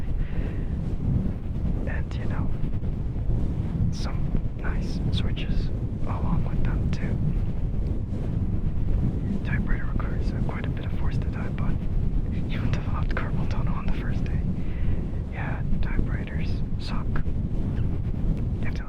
And you know, some nice switches along with them too. Typewriter requires quite a bit of force to type on. You developed carpal tunnel on the first day. Yeah, typewriters suck. You have to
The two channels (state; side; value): identical; both; correlation 1.00